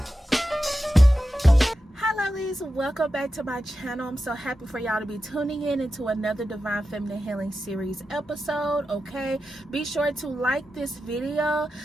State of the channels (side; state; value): both; normal; correlation 0.91